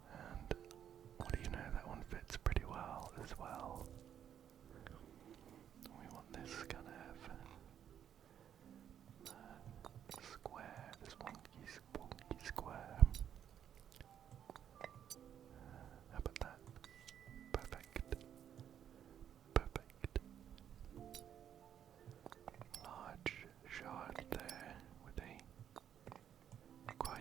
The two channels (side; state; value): left; quieter; 9.5 dB